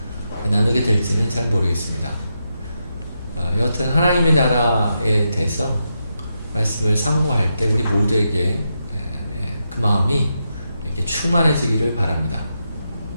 나누게 될지는 잘 모르겠습니다. 여하튼 하나님의 나라에 대해서 말씀을 상고할 때 우리 모두에게 그 마음이 이렇게 충만해지기를 바랍니다.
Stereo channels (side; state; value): both; inverted; correlation -0.85